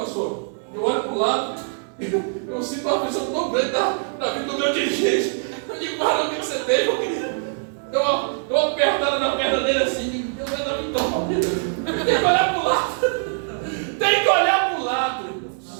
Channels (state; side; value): silent; left; digital silence